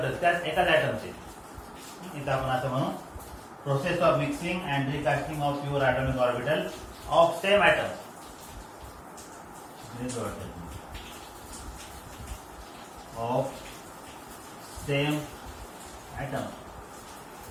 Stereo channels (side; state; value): both; identical; correlation 1.00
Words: त्याच एकाच ॲटमचे. इथं आपण असं म्हणू process of mixing and recasting of pure atomic orbital of same atom. Of same atom.